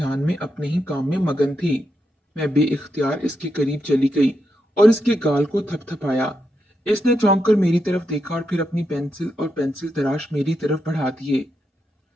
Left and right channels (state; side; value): normal; both; correlation 0.84